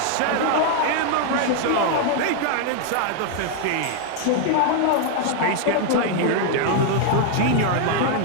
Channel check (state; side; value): different; both; correlation 0.00